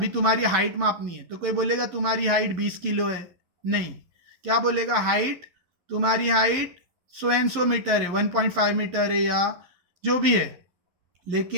तुम्हारी हाइट मापनी है तो कोई बोलेगा तुम्हारी हाइट 20 किलो है, नहीं, क्या बोलेगा, हाइट, तुम्हारी हाइट 100 मीटर है, 1.5 मीटर है, या जो भी है,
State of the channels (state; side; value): late; left; 11 ms